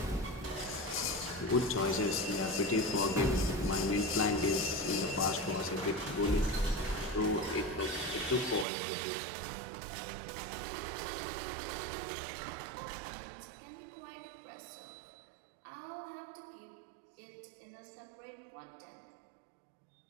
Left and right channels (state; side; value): drops out; left; at 8.7 s